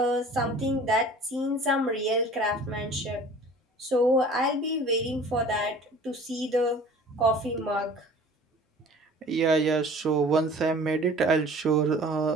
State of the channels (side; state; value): both; normal; correlation 0.46